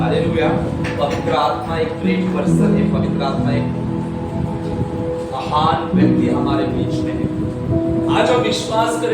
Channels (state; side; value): identical; both; correlation 1.00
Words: पवित्र आत्मा एक ग्रेट पर्सन है, पवित्र आत्मा एक महान व्यक्ति हमारे बीच में है। आज हम विश्वास